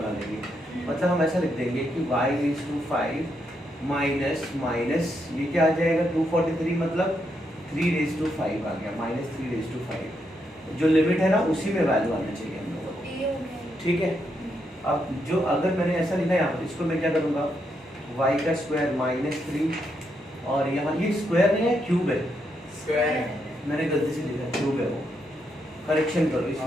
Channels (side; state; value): both; normal; correlation 0.80